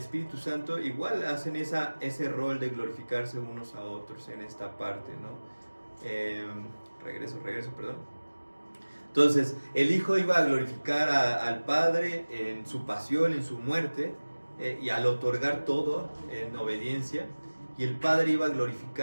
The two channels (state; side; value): inverted; both; correlation -1.00